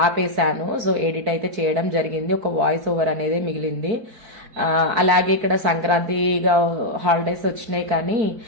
ఆపేశాను. సో ఎడిట్ అయితే చేయడం జరిగింది, ఒక వాయిస్ ఓవర్ అనేది మిగిలింది. అలాగే ఇక్కడ సంక్రాంతిగా హాలిడేస్ వచ్చినాయి కానీ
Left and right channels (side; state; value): left; late; 4.5 ms